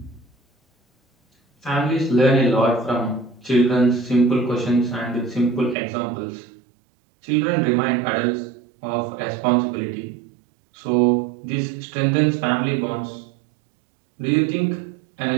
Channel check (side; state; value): left; drops out; at 5.8 s